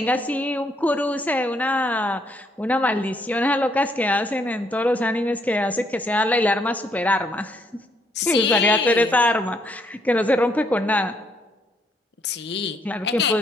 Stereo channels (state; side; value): normal; both; correlation 0.71